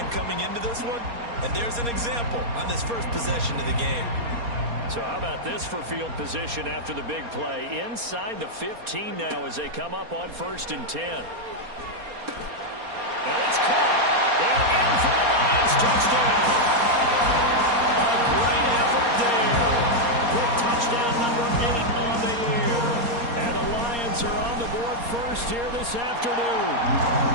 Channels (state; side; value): late; left; 4.3 ms